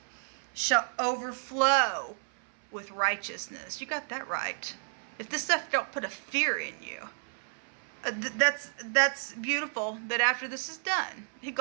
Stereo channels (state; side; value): silent; left; 56 dB below the other